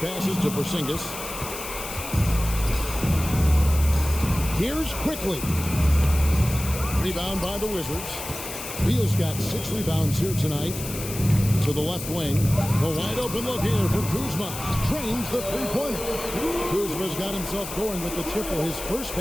to Porzingis. Here's quickly. Rebound by the Wizards. Beal's got 6 rebounds here tonight. To the left wing. A wide open look here for Kuzma. Trains the 3-pointer. Kuzma's got himself going with the triple, his first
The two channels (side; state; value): left; noise; hiss, 9 dB below the sound